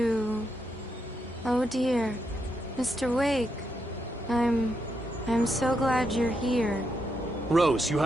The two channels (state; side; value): normal; both; correlation 0.81